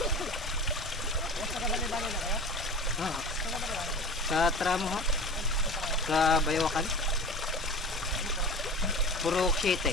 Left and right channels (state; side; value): normal; both; correlation 0.34